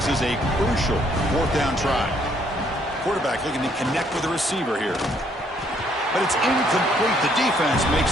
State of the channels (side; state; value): both; normal; correlation 0.67